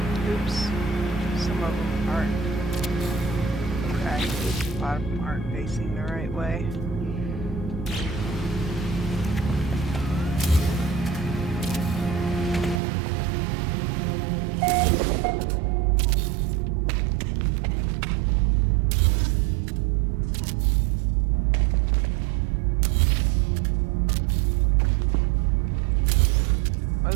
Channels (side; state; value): left; drops out; at 12.8 s